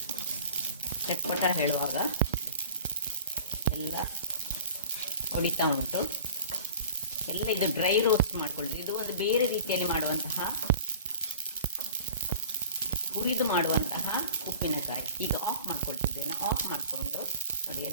ಚಟ್ಪಟ ಹೇಳುವಾಗ ಎಲ್ಲ ಹೊಡಿತಾ ಉಂಟು. ಎಲ್ಲ ಇದು ಡ್ರೈ ರೋಸ್ಟ್ ಮಾಡ್ಕೊಳ್ಳಿ. ಇದು ಒಂದು ಬೇರೆ ರೀತಿಯಲ್ಲಿ ಮಾಡುವಂತಹ, ಹುರಿದು ಮಾಡುವಂತಹ ಉಪ್ಪಿನಕಾಯಿ. ಈಗ ಆಫ್ ಮಾಡ್ಕೊಳ್ತಿದ್ದೇನೆ. ಆಫ್ ಮಾಡಿಕೊಂಡು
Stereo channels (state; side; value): inverted; both; correlation -0.41